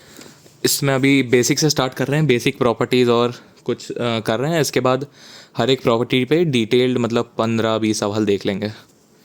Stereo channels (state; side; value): identical; both; correlation 1.00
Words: इसमें अभी बेसिक से स्टार्ट कर रहे हैं, बेसिक प्रॉपर्टीज़ और कुछ कर रहे हैं। इसके बाद हर एक प्रॉपर्टी पे डिटेल्ड मतलब 15-20 सवाल देख लेंगे,